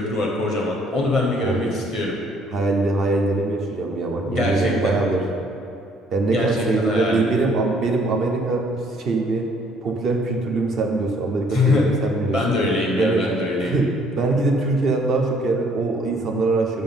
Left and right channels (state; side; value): normal; both; correlation 0.62